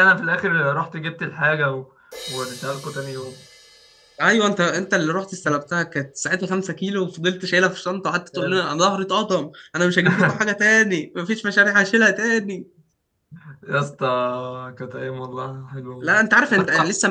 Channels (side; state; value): both; identical; correlation 1.00